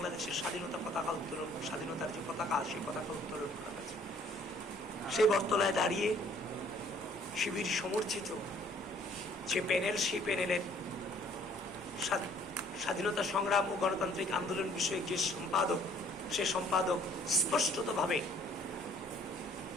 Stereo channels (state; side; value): normal; both; correlation 0.58